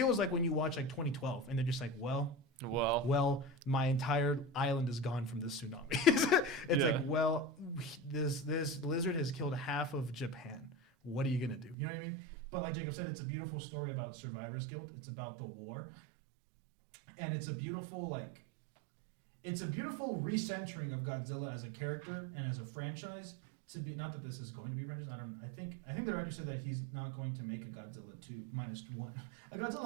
like when you watch like 2012 and they're just like, well, my entire island is gone from this tsunami. This lizard has killed half of Japan. What are you gonna do? You know what I mean? But like Jacob said, it's a beautiful story about survivor's guilt. It's about the war, and it's a beautiful recentering of Godzilla as a character and as a franchise. To be, not that this is going to be a franchise. I think the director said that he's not going to make a Godzilla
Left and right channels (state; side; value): drops out; left; at 11.8 s